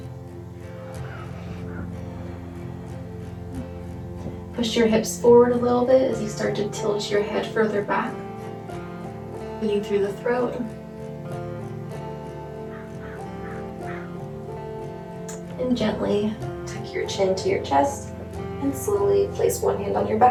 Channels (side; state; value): both; identical; correlation 1.00